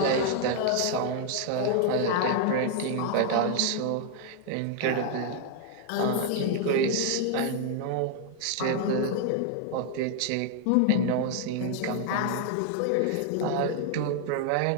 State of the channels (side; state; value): both; different; correlation 0.00